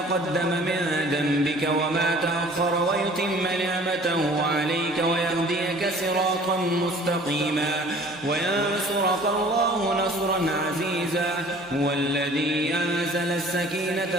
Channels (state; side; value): normal; both; correlation 0.49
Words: من ذنبك وما تأخر ويتم نعمته عليك ويهديك صراطا مستقيما وينصرك الله نصرا عزيزا. هو الذي أنزل